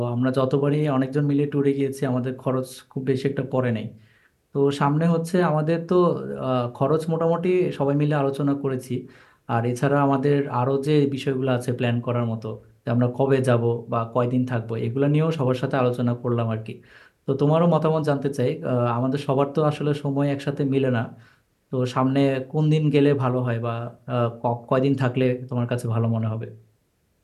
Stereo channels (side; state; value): both; identical; correlation 1.00